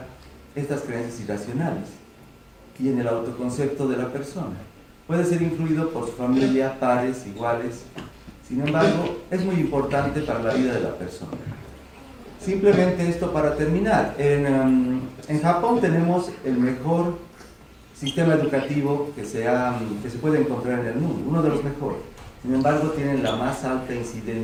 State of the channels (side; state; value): both; identical; correlation 1.00